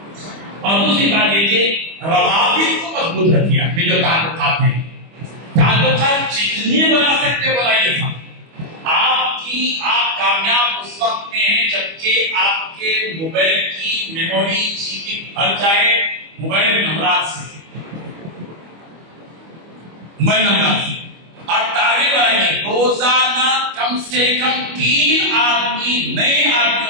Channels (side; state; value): left; late; 25 ms